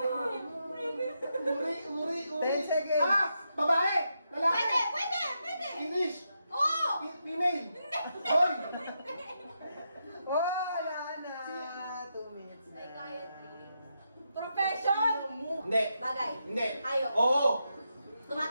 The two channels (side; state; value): both; inverted; correlation -0.84